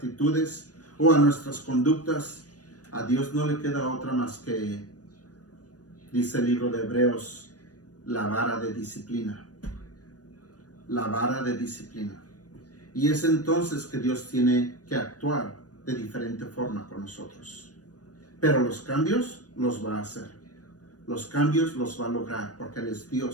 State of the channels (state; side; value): late; right; 0.68 ms